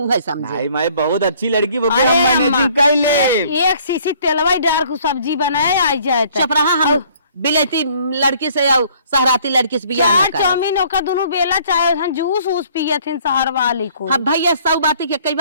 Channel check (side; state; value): both; inverted; correlation -0.58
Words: है समझे। नहीं मैं बहुत अच्छी लड़की वो हम मैनेजिंग कर ले एक सीसी तेलवा डाल को सब्जी बनाए आई जाए चुप रहा हम बिलैती लड़की से और सहराती लड़की से बियाह ना करे। चाउमीन ओका दोनों बेला चाहे हम जूस उस पिए थे शहर वाली को। हाँ भैया सौ बाती के कई